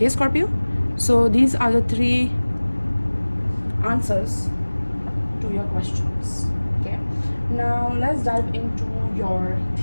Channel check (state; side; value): inverted; both; correlation -1.00